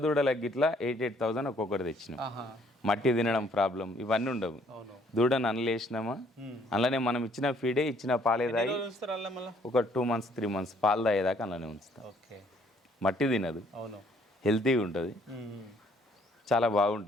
దూడలకి ఇట్లా 88,000 ఒక్కొక్కటి తెచ్చినాం. మట్టి తినడం ప్రాబ్లం ఇవన్నీ ఉండవు. దూడను అనలేసినామా, అందులోనే మనం ఇచ్చిన ఫీడే ఇచ్చిన పాలే తాగి ఒక 2 months 3 months పాలు తాగేదాకా అందులోనే ఉంచుతాం. మట్టి తినదు, హెల్తీగా ఉంటుంది, చాలా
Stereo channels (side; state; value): both; normal; correlation 0.63